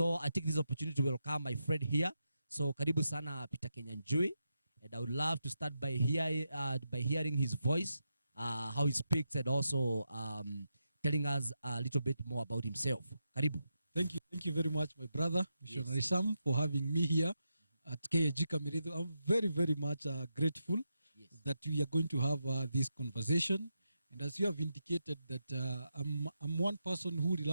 I take this opportunity to welcome my friend here. So karibu sana Peter Kenyanjui. And I would love to start by hearing his voice, how he speaks, and also telling us a little bit more about himself. Karibu. Thank you very much, my brother, Missionary Sam, for having me here at KAG Kamirido. I'm very, very much grateful that we are going to have this conversation. And as you have indicated that I'm one person who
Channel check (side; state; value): both; inverted; correlation -0.86